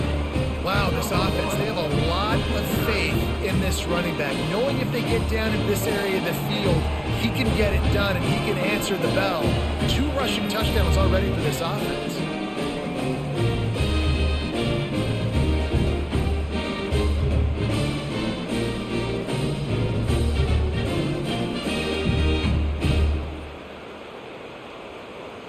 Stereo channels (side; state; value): both; identical; correlation 1.00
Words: Wow, this offense, they have a lot of faith in this running back. Knowing if they get down in this area of the field, he can get it done and he can answer the bell. 2 rushing touchdowns already for this offense.